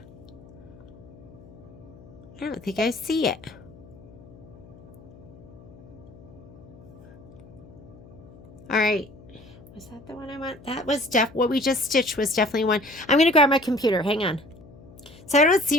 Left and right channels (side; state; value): left; noise; hum, 20 dB below the sound